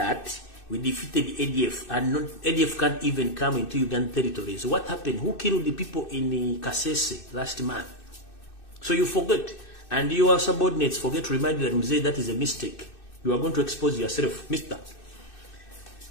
we defeated the ADF, and ADF can't even come into Ugandan territories. What happened? Who killed the people in Kasese last month? So you forget, and your subordinates forget to remind you that Mzee, that is a mistake. You are going to expose yourself, Mister.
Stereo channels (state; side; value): late; right; 2.6 ms